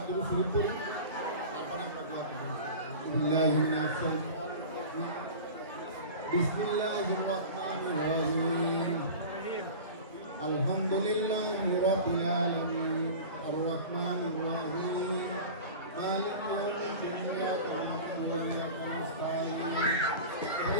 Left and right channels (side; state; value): both; inverted; correlation -0.34